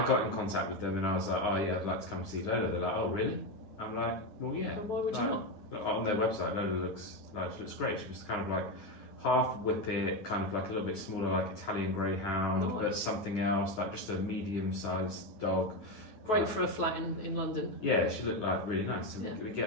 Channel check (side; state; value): right; late; 9.5 ms